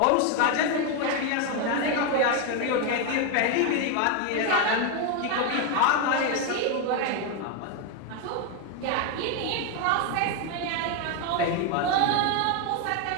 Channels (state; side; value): different; both; correlation 0.01